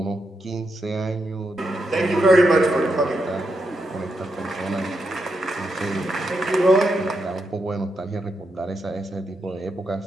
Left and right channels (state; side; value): normal; both; correlation 0.83